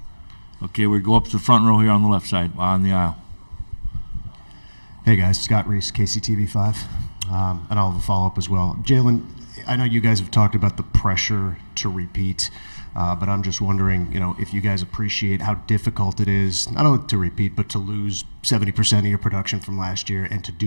Okay, we go up to the front row here on the left side, on the aisle. Hey guys, Scott Reese, KCTV5, and I'll have a follow-up as well. Jalen, I know you guys have talked about the pressure to repeat, but I'm just wondering, if you guys appreciate how difficult it is, not only to repeat, but to lose 70% of your production from last year and to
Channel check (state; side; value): inverted; both; correlation -1.00